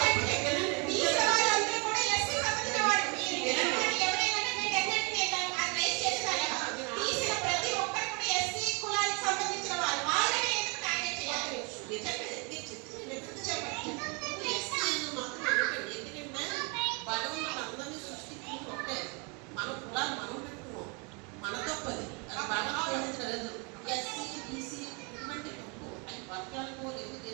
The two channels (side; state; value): left; quieter; 32.5 dB